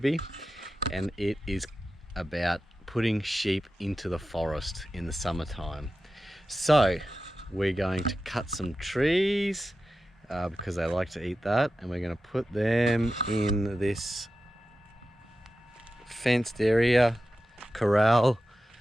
and it is about putting sheep into the forest in the summertime. So we're going to cut some trees because they like to eat that, and we're going to put them in this fenced area, corral,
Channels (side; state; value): both; normal; correlation 0.92